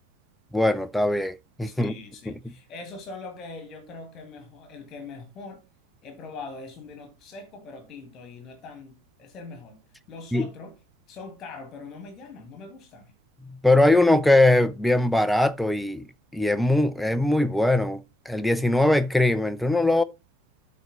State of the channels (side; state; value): both; normal; correlation 0.91